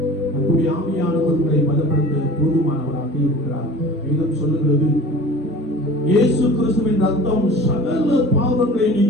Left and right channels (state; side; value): normal; both; correlation 0.42